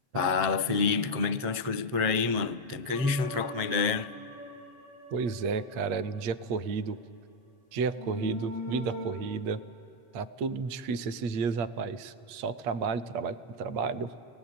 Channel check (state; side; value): late; left; 7.7 ms